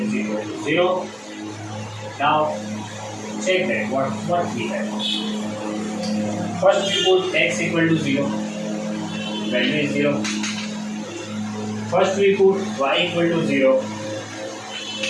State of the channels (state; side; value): identical; both; correlation 1.00